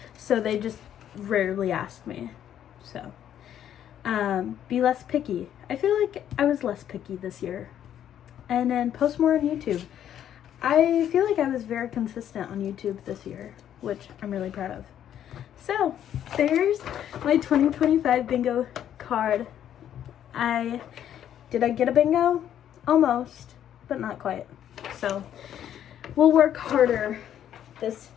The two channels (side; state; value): right; quieter; 10.3 dB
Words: So they just rarely ask me. So Be less picky. I feel like I was less picky this year. And then post more on YouTube. I feel like I was very consistent on YouTube this year, which I'm really proud of. So, there's my 2025 bingo card. Did I get a bingo? Almost, but not quite. So, we'll work harder this